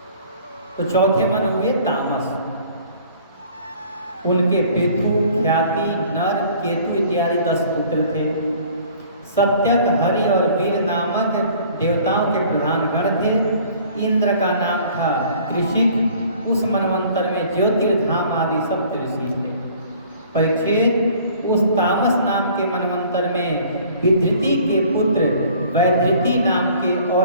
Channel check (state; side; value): inverted; both; correlation -0.52